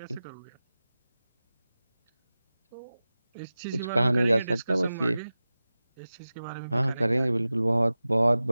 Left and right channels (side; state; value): both; inverted; correlation -0.96